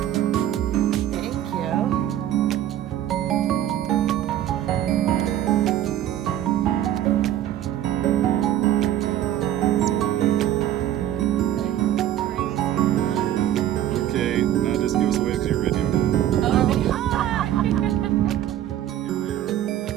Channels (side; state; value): left; quieter; 12.0 dB